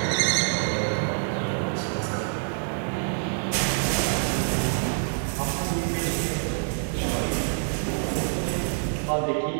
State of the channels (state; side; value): silent; left; 57 dB below the other